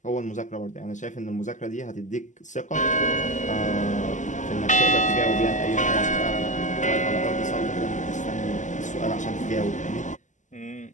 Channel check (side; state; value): right; late; 0.36 ms